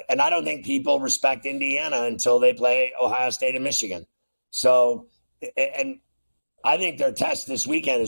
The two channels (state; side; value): inverted; both; correlation -1.00